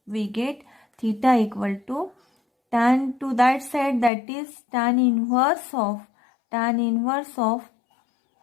to tan to that side, that is tan inverse of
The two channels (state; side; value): drops out; right; at 4.1 s